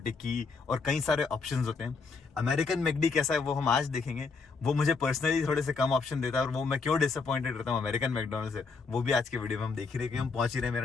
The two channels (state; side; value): quieter; right; 4.6 dB